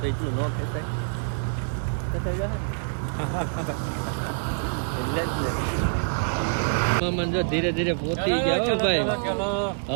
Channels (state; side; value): silent; left; digital silence